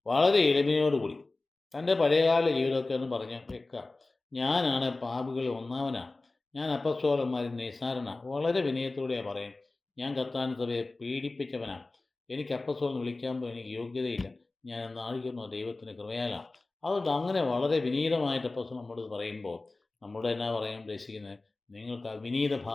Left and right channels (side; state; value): right; quieter; 3.3 dB